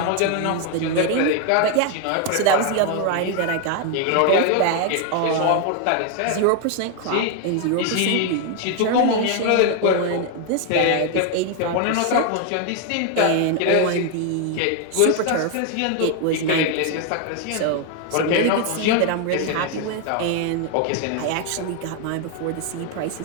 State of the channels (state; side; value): different; both; correlation 0.01